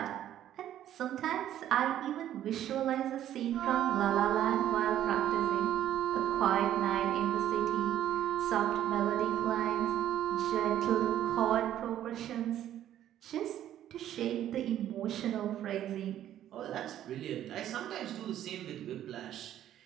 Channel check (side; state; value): left; quieter; 11.6 dB